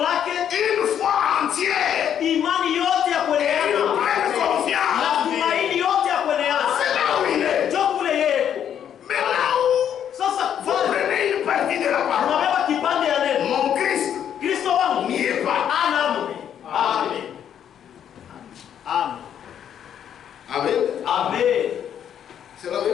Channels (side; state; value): right; quieter; 9.3 dB